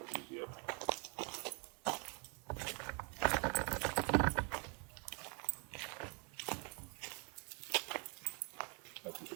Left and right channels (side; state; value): left; quieter; 34.7 dB